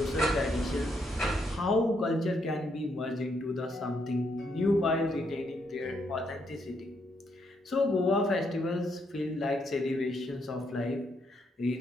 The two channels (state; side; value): normal; both; correlation 0.76